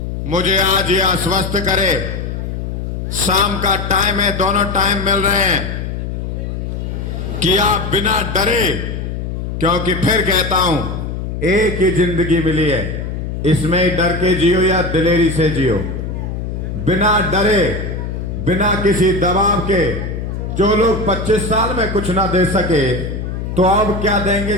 मुझे आज ये आश्वस्त करे, शाम का टाइम है, दोनों टाइम मिल रहे हैं कि आप बिना डरे, क्योंकि फिर कहता हूं एक ही जिंदगी मिली है, इसमें ही डर के जियो या दिलेरी से जियो, बिना डरे, बिना किसी दबाव के। जो लोग 25 साल में कुछ ना दे सके तो अब क्या देंगे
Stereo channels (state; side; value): noise; left; hum, 5 dB below the sound